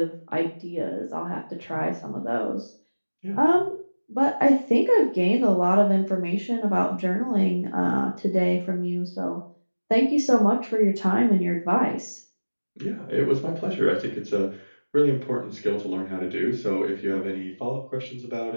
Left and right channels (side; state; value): both; inverted; correlation -1.00